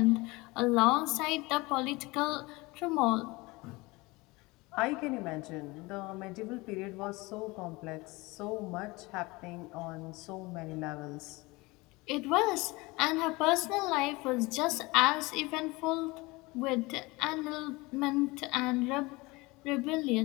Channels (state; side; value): quieter; right; 23.3 dB